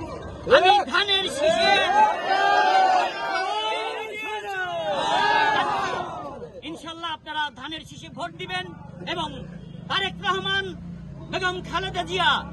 আমি ধানের শীষে ইনশাল্লাহ আপনারা ধানের শীষে ভোট দিবেন এবং তারেক রহমান, বেগম খালেদা জিয়া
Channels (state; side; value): identical; both; correlation 1.00